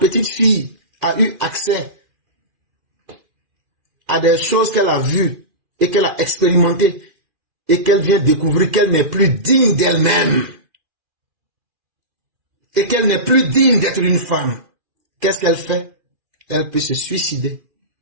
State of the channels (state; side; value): late; left; 2.4 ms